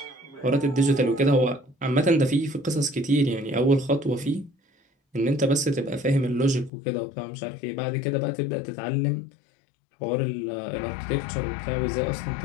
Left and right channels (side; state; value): right; drops out; at 6.7 s